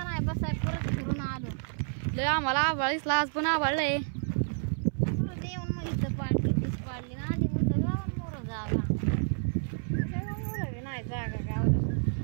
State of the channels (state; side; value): silent; left; 58 dB below the other